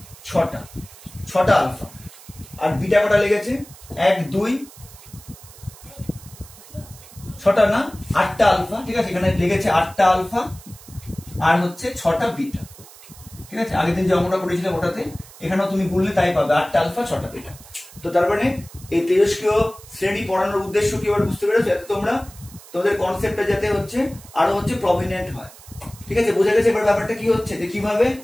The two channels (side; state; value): right; noise; hiss, 20 dB below the sound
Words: 6টা আলফা। আর বিটা কটা লেগেছে? 1 2 6টা না 8টা আলফা, ঠিক আছে। এখানে লেগেছে 8টা আলফা আর হচ্ছে 6টা বিটা, ঠিক আছে। আগের দিন যে অঙ্কটা করেছিলাম ওটাতে এখানেও তুমি বললে তাই পাবে, 8টা আলফা 6টা বিটা। তো তার মানে এই তেজস্ক্রিয় শ্রেণী পড়ানোর উদ্দেশ্য কি এবার বুঝতে পেরেছো? যাতে তোমাদের কনসেপ্টটা যাতে হচ্ছে আরো হচ্ছে প্রমিনেন্ট হয়, ঠিক আছে। বোঝা গেছে এবার ব্যাপারটা কি হচ্ছে, যে কিভাবে